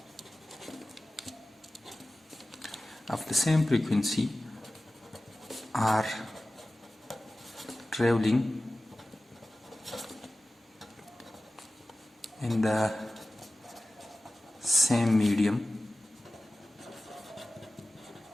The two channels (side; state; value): both; normal; correlation 0.96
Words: are traveling in the same medium